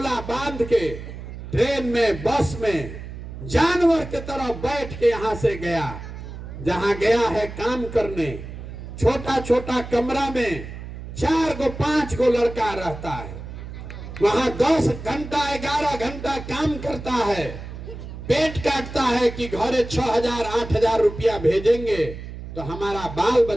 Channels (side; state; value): right; noise; hum, 11 dB below the sound